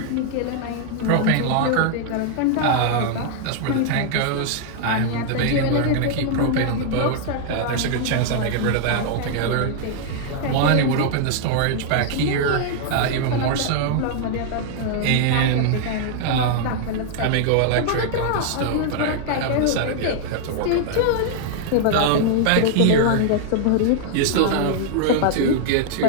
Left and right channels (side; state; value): both; different; correlation 0.00